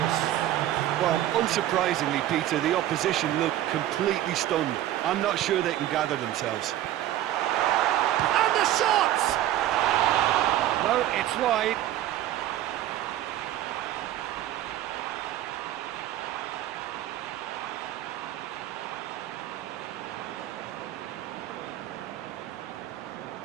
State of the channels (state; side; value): quieter; left; 13.4 dB